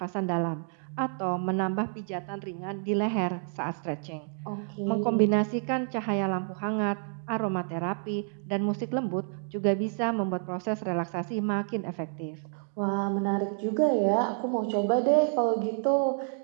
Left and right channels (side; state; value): left; silent; 58 dB below the other